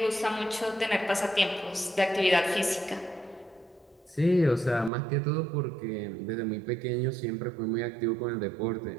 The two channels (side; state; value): left; drops out; at 4.9 s